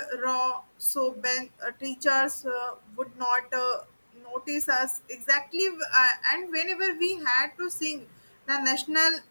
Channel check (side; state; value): both; inverted; correlation -1.00